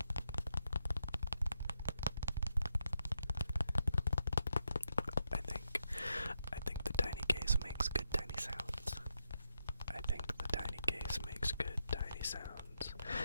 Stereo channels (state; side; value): inverted; both; correlation -0.82